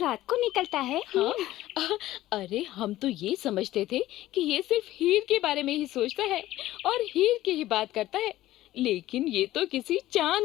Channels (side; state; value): right; quieter; 15.3 dB